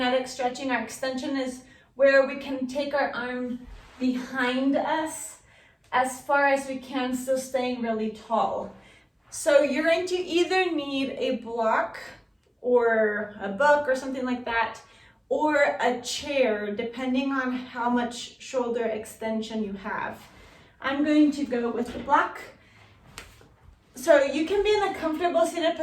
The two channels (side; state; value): both; identical; correlation 1.00